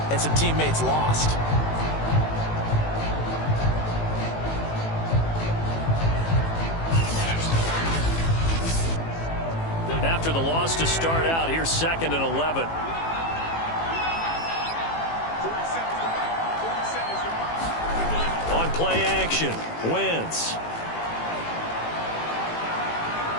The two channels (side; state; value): right; late; 18 ms